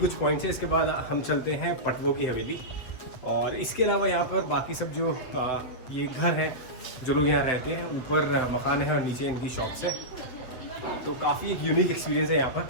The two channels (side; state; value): right; late; 7.9 ms